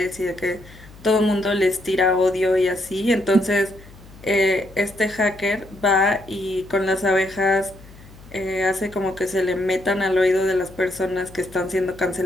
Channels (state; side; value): noise; left; hum, 21 dB below the sound